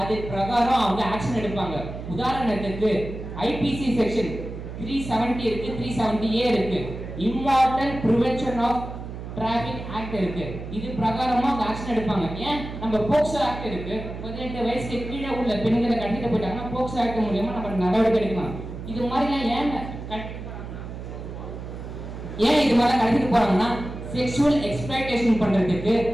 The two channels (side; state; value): right; noise; hum, 9 dB below the sound